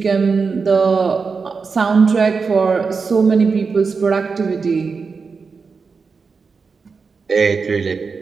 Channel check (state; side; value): quieter; left; 5.0 dB